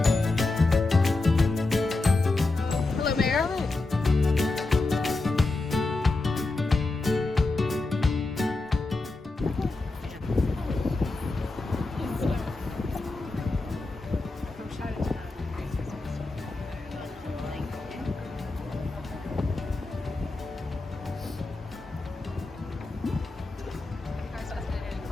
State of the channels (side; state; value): right; quieter; 3.2 dB